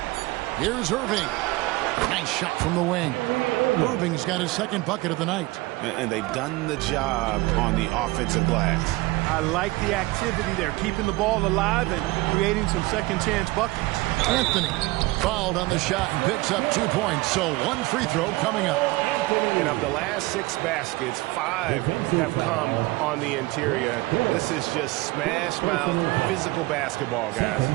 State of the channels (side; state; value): left; quieter; 21.3 dB